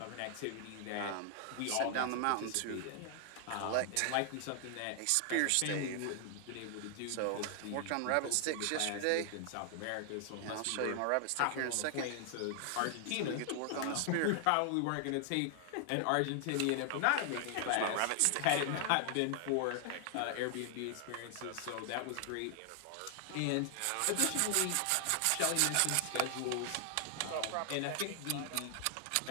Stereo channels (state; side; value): different; both; correlation 0.00